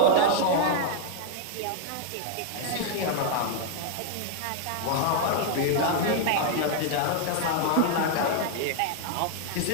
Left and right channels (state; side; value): different; both; correlation 0.00